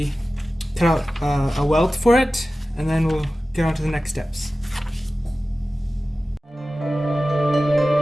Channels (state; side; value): normal; both; correlation 0.95